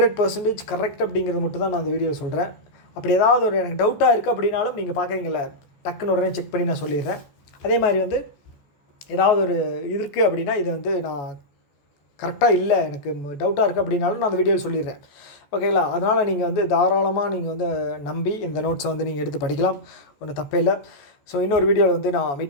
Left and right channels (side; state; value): right; late; 14 ms